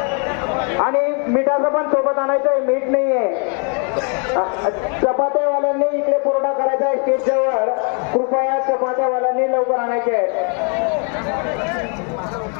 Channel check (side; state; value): right; quieter; 39.9 dB